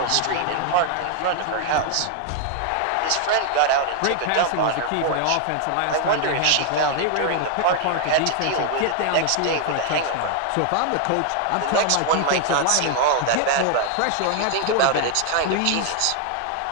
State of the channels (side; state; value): both; different; correlation 0.00